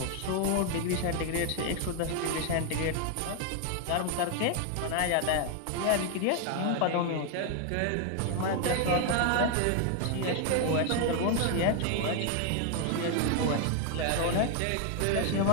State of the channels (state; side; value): different; both; correlation 0.01